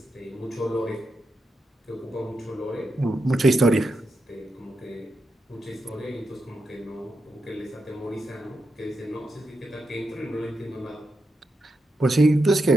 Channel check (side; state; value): both; normal; correlation 0.86